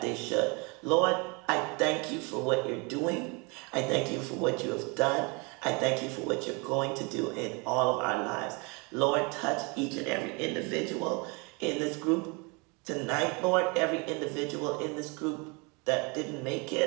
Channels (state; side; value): quieter; left; 30.2 dB